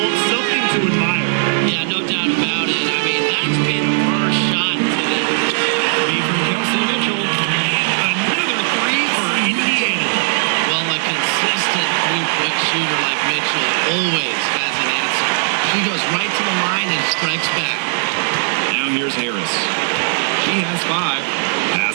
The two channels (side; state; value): left; silent; 68 dB below the other